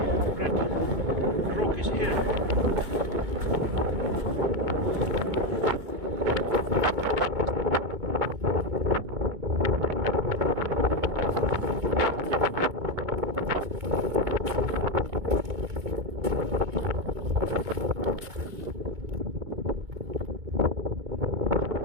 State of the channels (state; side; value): late; left; 2.2 ms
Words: red rock is here.